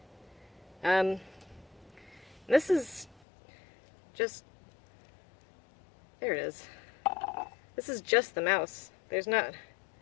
This is just, there it is. This is just the mouse. There's not,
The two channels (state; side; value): drops out; right; at 3.2 s